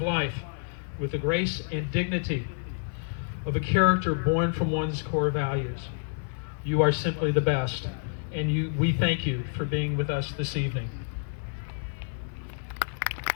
life with the grace and dignity of a character born from one's core values. You are simply the best, and we thank you for being with us this evening.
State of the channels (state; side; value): silent; right; 59 dB below the other